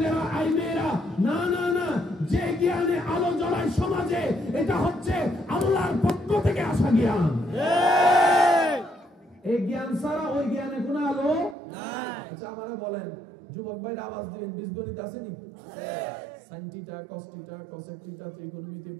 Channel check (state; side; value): drops out; left; at 11.6 s